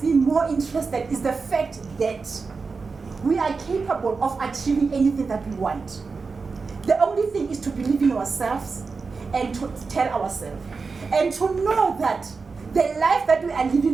me more interested is the fact that we are capable of achieving anything that we want. The only thing is to believe in ourselves and to tell ourselves. And to know that the life that we are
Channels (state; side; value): quieter; left; 4.6 dB